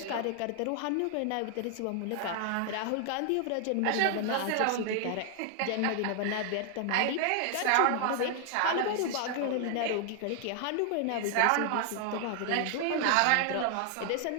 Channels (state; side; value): different; both; correlation 0.00